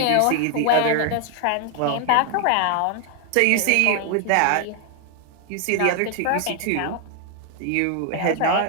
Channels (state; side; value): different; both; correlation 0.00